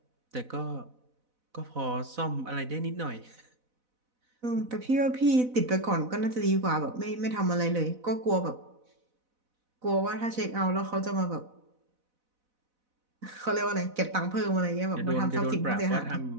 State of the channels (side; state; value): left; late; 4.0 ms